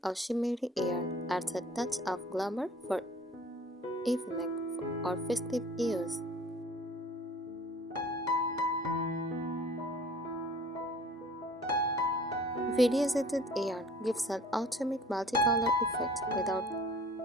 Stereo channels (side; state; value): both; normal; correlation 0.49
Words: or shimmery yarn adds a touch of glamour for evening or festive use. Variegated yarn gives an ultimate multicolor effect without